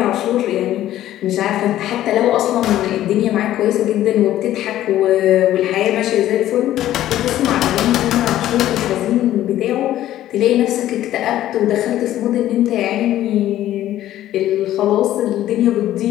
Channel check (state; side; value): quieter; right; 13.2 dB